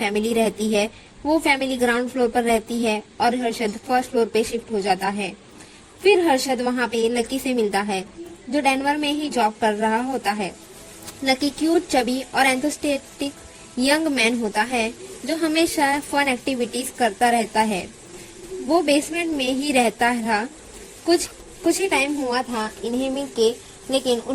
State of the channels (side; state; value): both; identical; correlation 1.00